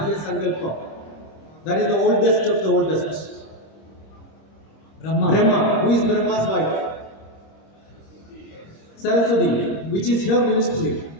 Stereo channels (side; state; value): right; late; 26 ms